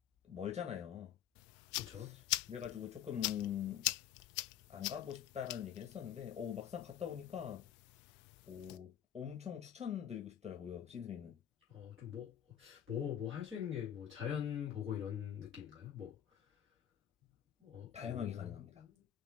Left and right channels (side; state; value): right; quieter; 10.4 dB